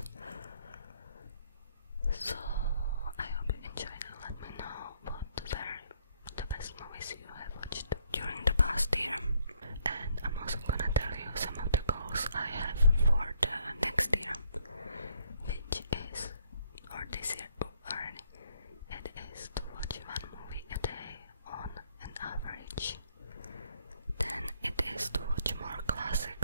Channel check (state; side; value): inverted; both; correlation -0.67